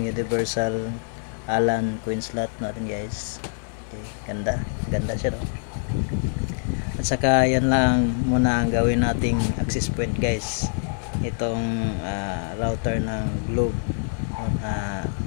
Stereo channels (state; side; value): silent; right; digital silence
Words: universal Allen coin slot natin guys. Okay, ganda siya, no? At saka yan lang muna ang gawin nating access point guys. Itong router ng Globe,